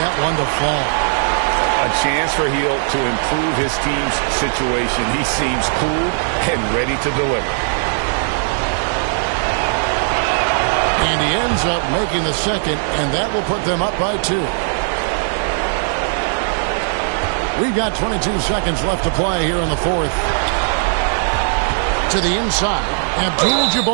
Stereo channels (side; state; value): left; silent; digital silence